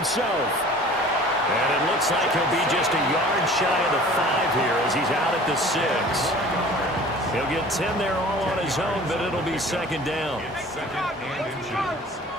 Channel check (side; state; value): both; normal; correlation 0.46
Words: And it looks like he'll be just a yard shy of the 5 here as he's out at the 6. He'll get 10 there all on his own, but it'll be second down. Second and inches